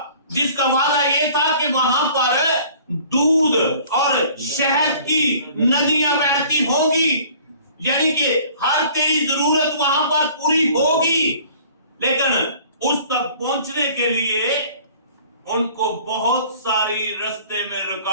जिसका वादा ये था कि वहां पर दूध और शहद की नदियां बहती होगी, यानी कि हर तेरी जरूरत वहां पर पूरी होगी। लेकिन उस तक पहुंचने के लिए उनको बहुत सारी रास्ते में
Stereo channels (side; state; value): both; inverted; correlation -0.50